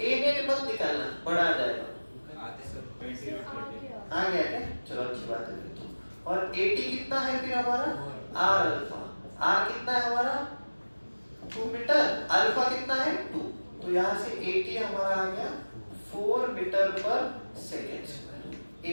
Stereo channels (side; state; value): both; inverted; correlation -1.00